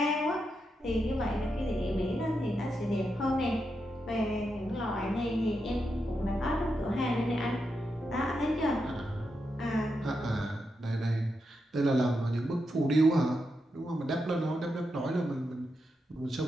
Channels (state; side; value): normal; both; correlation 0.85